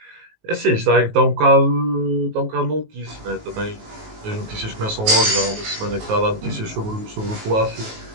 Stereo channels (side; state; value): left; late; 19 ms